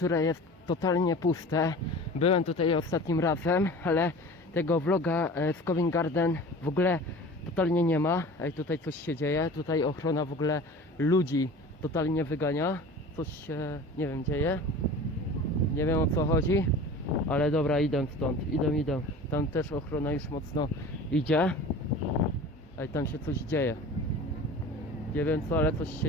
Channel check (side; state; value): both; normal; correlation 0.39